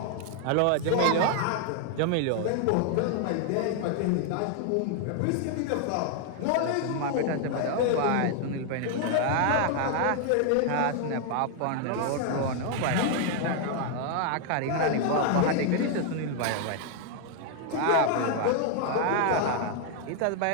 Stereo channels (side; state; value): both; different; correlation 0.00